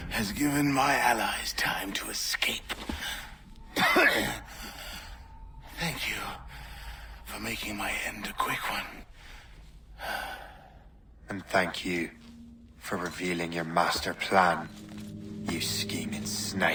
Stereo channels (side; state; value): both; identical; correlation 1.00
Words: has given my allies time to escape. Thank you for making my end a quick one. And thank you for revealing your master plan, you scheming